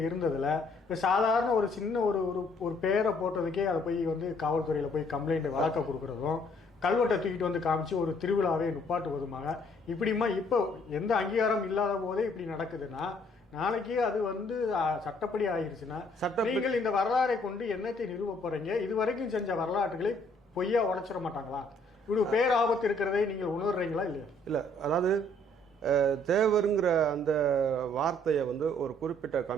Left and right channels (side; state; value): both; normal; correlation 0.64